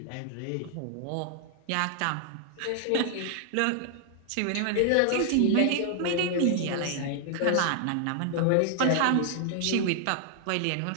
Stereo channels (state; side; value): different; both; correlation 0.00